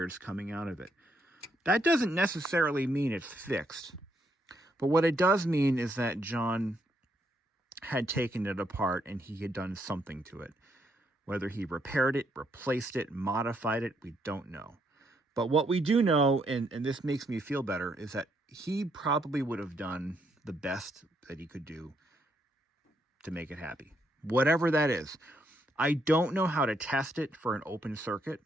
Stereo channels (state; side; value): normal; both; correlation 0.75